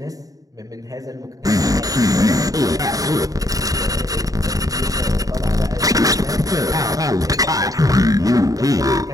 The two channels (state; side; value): late; left; 0.17 ms